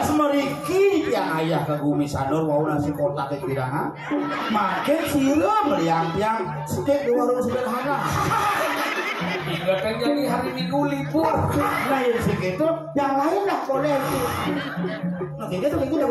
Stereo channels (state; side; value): identical; both; correlation 1.00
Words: meriki yang ayah ke Gumi Sanur wau nasi kotak ke kirangan. Makin siram liang-liang steak di warung sederhana. Hingga kan jadi hari Minggu libur. Nah yang segitu, yang lain lah boleh. Nah gitu.